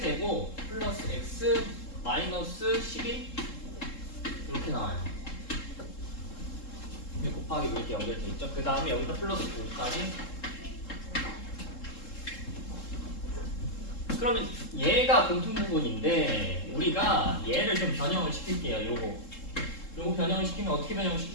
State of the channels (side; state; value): right; late; 3.7 ms